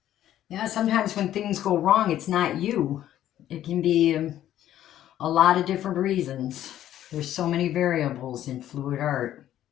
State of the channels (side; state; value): right; quieter; 12.1 dB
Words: Yeah, sometimes when things go wrong, it's not you. It can be a lot of different reasons. There's so many variables in fluid art.